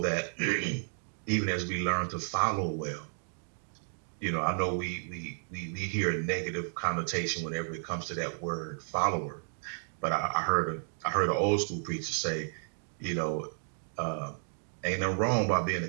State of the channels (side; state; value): left; silent; digital silence